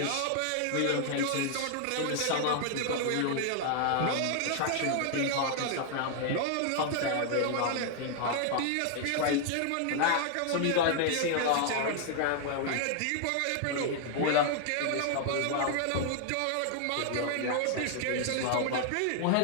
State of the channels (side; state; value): both; different; correlation 0.00